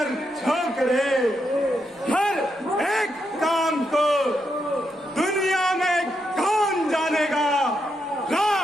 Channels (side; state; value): both; normal; correlation 0.82